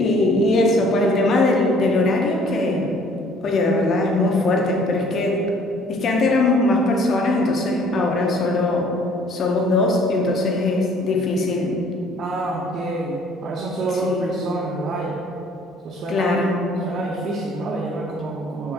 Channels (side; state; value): both; normal; correlation 0.57